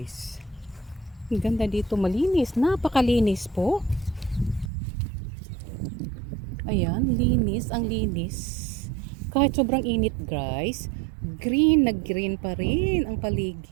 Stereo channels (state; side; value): drops out; left; at 4.7 s